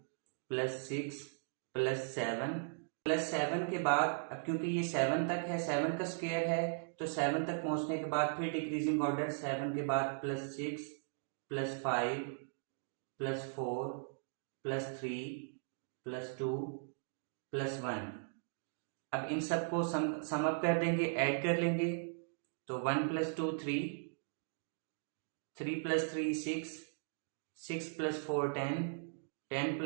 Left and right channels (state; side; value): silent; left; digital silence